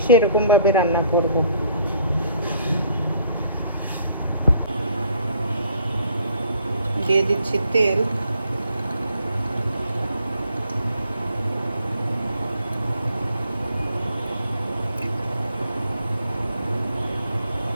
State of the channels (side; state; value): both; inverted; correlation -0.63